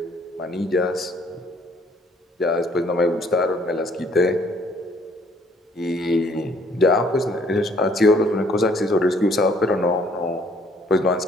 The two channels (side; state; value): both; normal; correlation 0.62